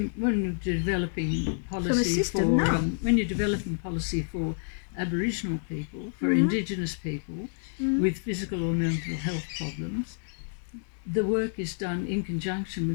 you're developing policy system, when you're developing policy for Aboriginal people, for Indigenous people with physical or mental health problems, the work is done in conjunction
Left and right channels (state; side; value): silent; right; digital silence